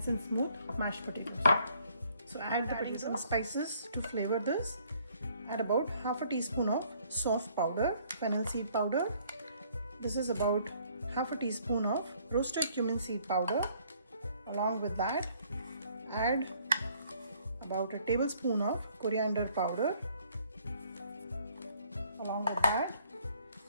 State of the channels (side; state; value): both; inverted; correlation -0.63